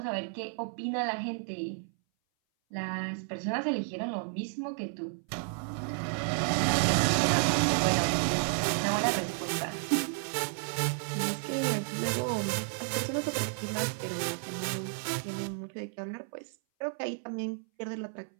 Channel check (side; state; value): left; silent; 57 dB below the other